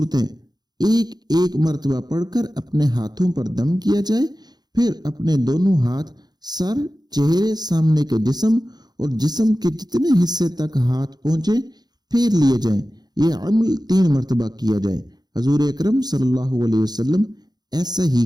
ایک ایک مرتبہ پڑھ کر اپنے ہاتھوں پر دم کیا جائے، پھر اپنے دونوں ہاتھ سر، چہرے، سامنے کے جسم اور جسم کے جتنے حصے تک ہاتھ پہنچے پھیر لیے جائیں۔ یہ عمل 3 مرتبہ کیا جائے۔ حضور اکرم صلی اللہ علیہ وسلم ایسا ہی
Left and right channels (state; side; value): late; left; 0.20 ms